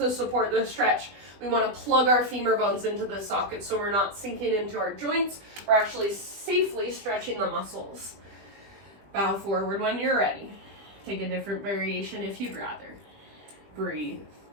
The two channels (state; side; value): late; left; 20 ms